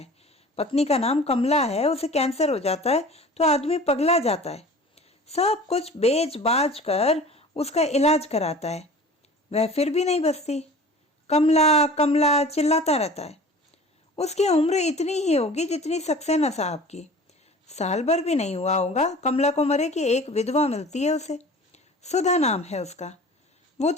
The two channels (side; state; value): both; normal; correlation 0.42